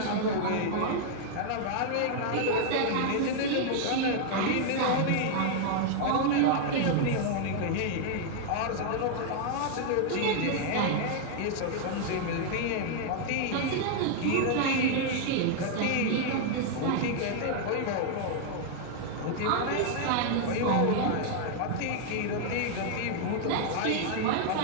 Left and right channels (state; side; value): different; both; correlation 0.00